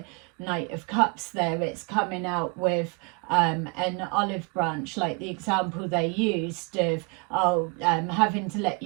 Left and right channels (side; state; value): left; quieter; 32.5 dB